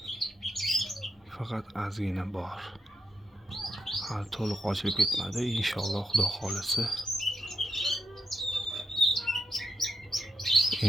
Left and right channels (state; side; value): normal; both; correlation 0.82